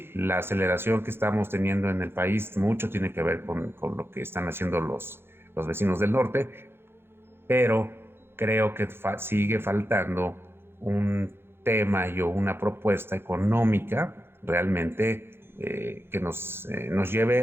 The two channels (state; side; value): late; left; 0.11 ms